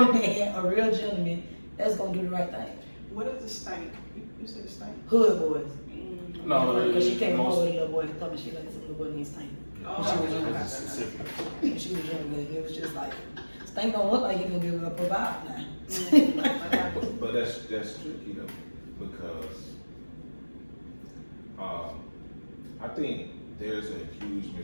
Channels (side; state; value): both; inverted; correlation -1.00